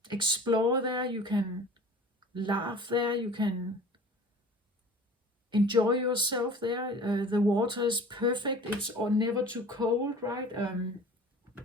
explore there, you can laugh there, you can enjoy yourself there. The water is perfect, it's never too cold, right?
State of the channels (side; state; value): both; normal; correlation 0.43